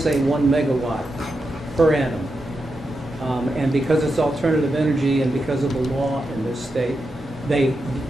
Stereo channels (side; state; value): both; normal; correlation 0.87